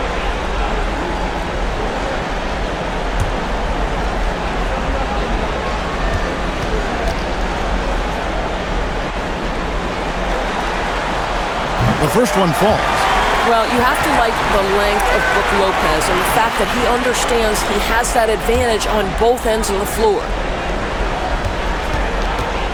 first one falls. Well, you have to like the length of Brook Lopez and the fact that he understands he has that advantage on both ends of the floor.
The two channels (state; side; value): identical; both; correlation 1.00